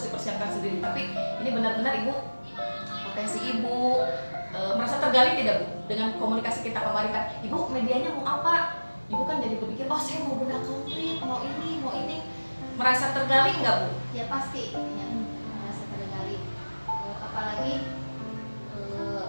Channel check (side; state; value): both; inverted; correlation -1.00